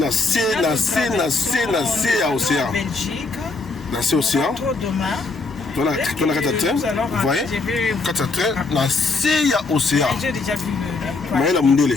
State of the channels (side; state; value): right; quieter; 3.8 dB